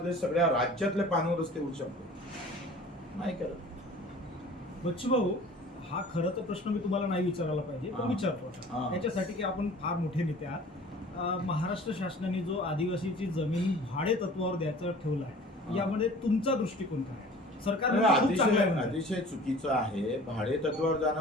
सगळ्या राज्यातले पाणंद रस्ते होऊ शकतो, नाही करत. बच्चू भाऊ, हा खरं तर प्रश्न मी तुम्हाला नाही विचारायला पाहिजे, पण विचारतो आता. याच्यासाठी की आपण फार मोठे नेते आहात. महाराष्ट्र शासनाने जो आदिवासीची जमीन भाडे तत्वावर द्यायचं ठेवलं आहे, यामध्ये तुमचा दृष्टिकोन काय आहे? सरकार अतिशय चुकीचं आहे. भाडे तत्वावर जाणं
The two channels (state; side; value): normal; both; correlation 0.45